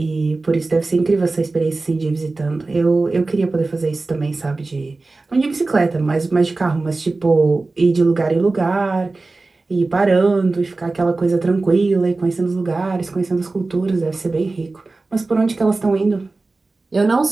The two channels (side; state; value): left; quieter; 3.5 dB